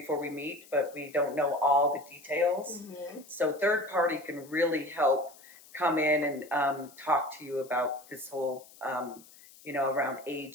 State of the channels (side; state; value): left; noise; hiss, 23 dB below the sound